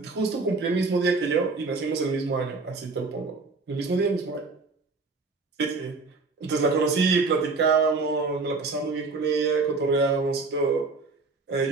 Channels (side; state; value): left; quieter; 3.9 dB